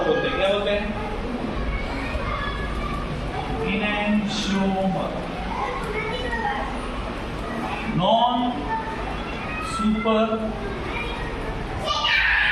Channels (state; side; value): identical; both; correlation 1.00